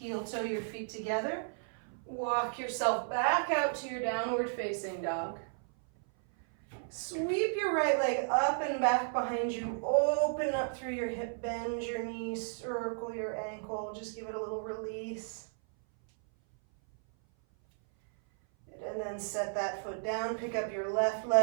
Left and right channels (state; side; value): silent; left; 55 dB below the other